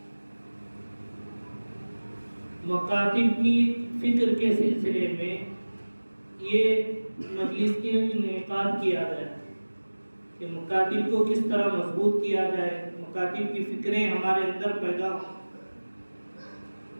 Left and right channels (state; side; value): inverted; both; correlation -1.00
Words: مکاتب کی فکر کے سلسلے میں یہ مجلس کے انعقاد کیا گیا کہ مکاتب کو کس طرح مضبوط کیا جائے، مکاتب کی فکریں ہمارے اندر پیدا ہوں.